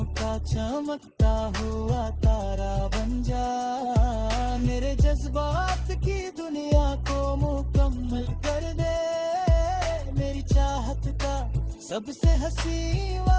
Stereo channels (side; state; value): both; identical; correlation 1.00